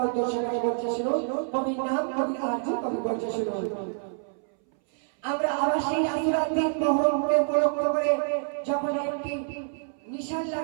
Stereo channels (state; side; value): silent; left; 60 dB below the other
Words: উদ্দেশ্য করে বলছে শুনো কবির নাম কবি আরজু কবি বলছে শুনো আমরা আবার সেই আসরার দিন মহরমকে উপলক্ষ করে যখন একটি নিশান